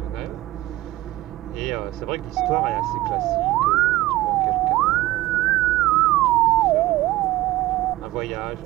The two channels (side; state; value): left; quieter; 17.2 dB